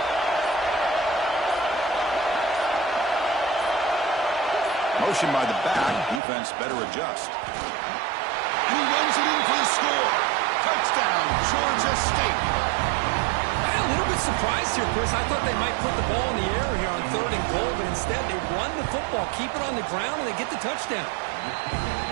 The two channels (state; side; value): drops out; left; at 6.2 s